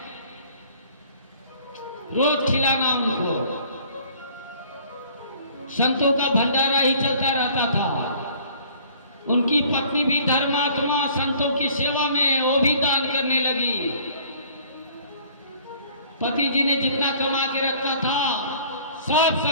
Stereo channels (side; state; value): both; inverted; correlation -0.54